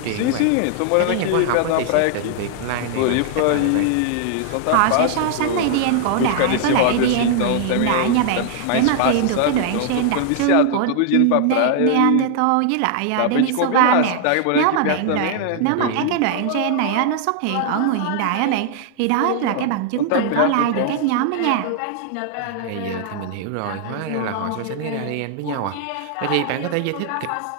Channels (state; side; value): different; both; correlation 0.00